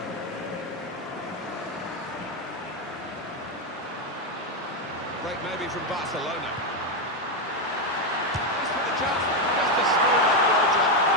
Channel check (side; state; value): both; normal; correlation 0.07